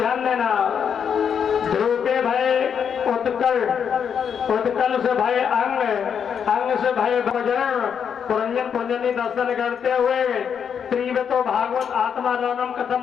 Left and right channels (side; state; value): right; quieter; 7.5 dB